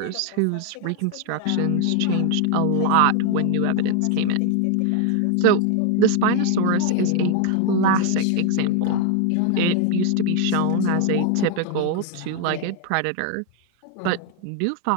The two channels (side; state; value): both; different; correlation 0.01